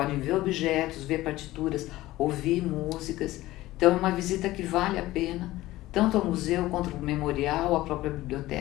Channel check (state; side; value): quieter; right; 16.9 dB